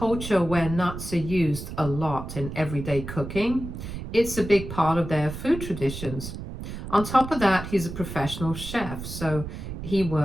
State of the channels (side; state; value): right; noise; rumble, 9 dB below the sound